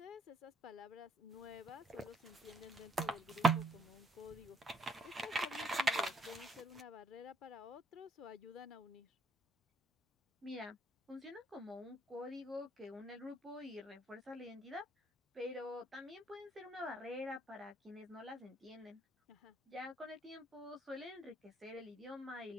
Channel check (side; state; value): both; normal; correlation 0.68